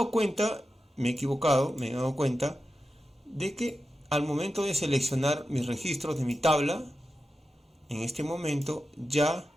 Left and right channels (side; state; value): both; normal; correlation 0.91